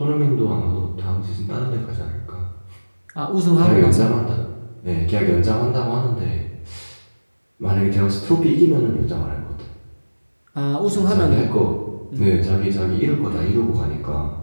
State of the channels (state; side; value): inverted; both; correlation -1.00